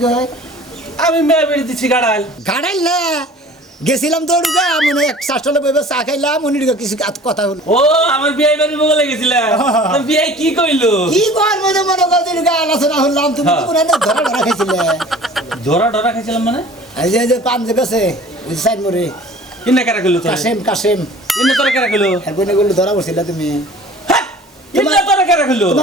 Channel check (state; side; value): normal; both; correlation 0.45